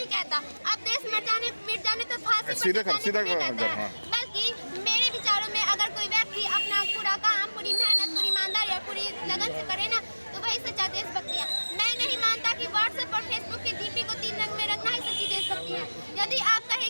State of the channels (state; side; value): inverted; both; correlation -1.00